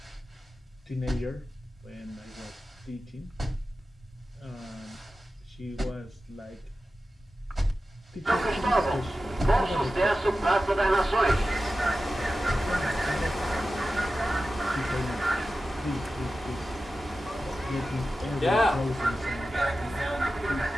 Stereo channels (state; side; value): normal; both; correlation 0.94